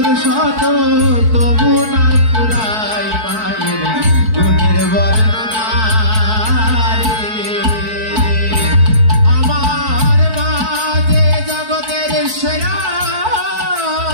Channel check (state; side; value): late; left; 4.6 ms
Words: শত তবু না ফুরাই মায়ের গুণের বর্ণনা রে আমার মা যে জগতের সেরা